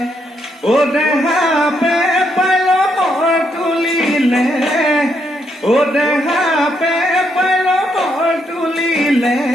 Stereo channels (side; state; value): both; normal; correlation 0.77